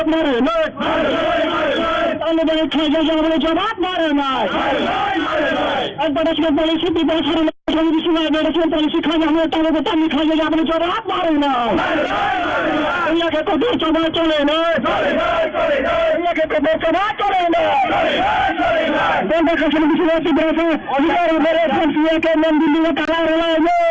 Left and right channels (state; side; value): identical; both; correlation 1.00